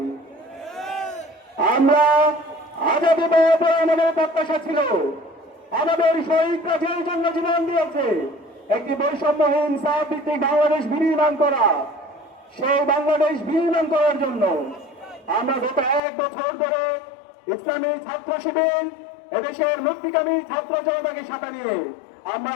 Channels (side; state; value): right; drops out; at 16.0 s